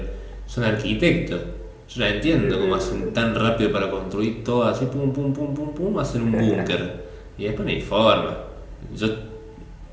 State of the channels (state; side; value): identical; both; correlation 1.00